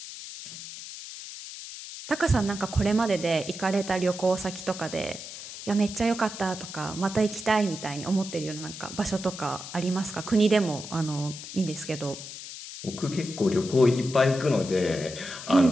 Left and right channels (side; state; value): left; noise; hiss, 11 dB below the sound